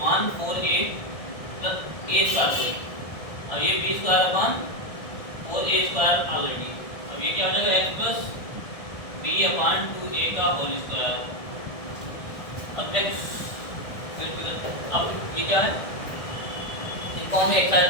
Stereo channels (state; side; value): late; right; 1.7 ms